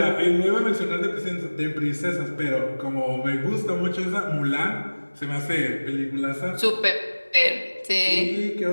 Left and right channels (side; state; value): both; inverted; correlation -1.00